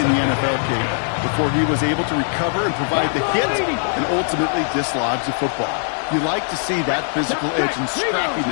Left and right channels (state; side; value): silent; right; digital silence